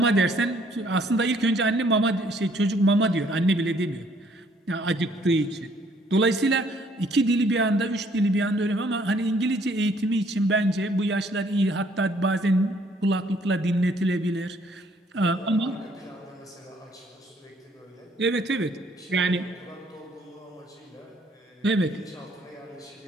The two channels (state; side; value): normal; both; correlation 0.64